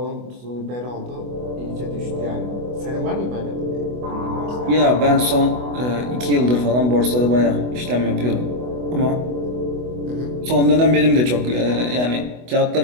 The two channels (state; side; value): late; left; 24 ms